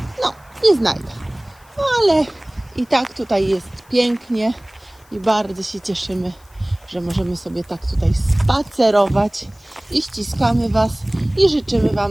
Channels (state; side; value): noise; left; hiss, 30 dB below the sound